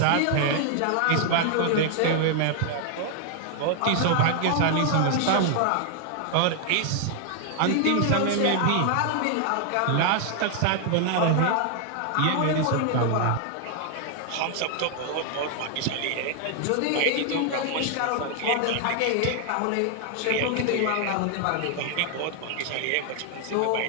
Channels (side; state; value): both; different; correlation 0.00